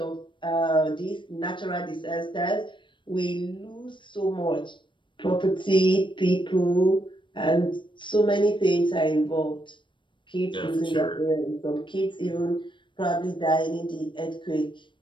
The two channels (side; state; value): right; late; 0.23 ms